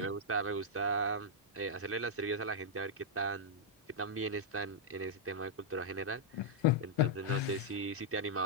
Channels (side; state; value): both; normal; correlation -0.06